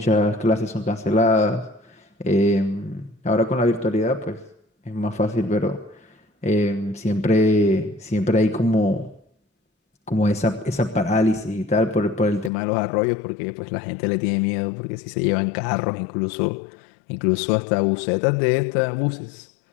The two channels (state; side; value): drops out; right; at 12.5 s